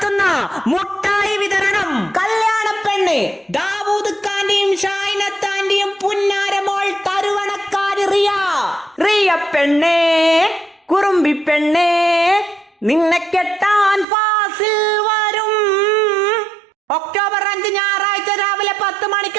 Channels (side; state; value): left; drops out; at 14.1 s